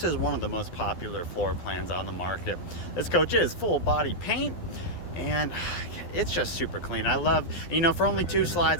is one of the most popular floor plans on the market. This coach is full body paint, and it's just super clean. I love, for only 2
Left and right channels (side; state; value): right; late; 12 ms